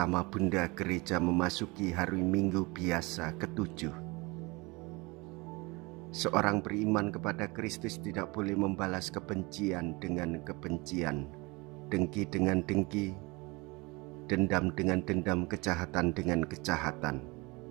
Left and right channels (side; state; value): left; quieter; 25.7 dB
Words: Bunda Gereja memasuki hari Minggu biasa ke-7. Seorang beriman kepada Kristus tidak boleh membalas kebencian dengan kebencian, dengki dengan dengki, dendam dengan dendam, kejahatan dengan kejahatan.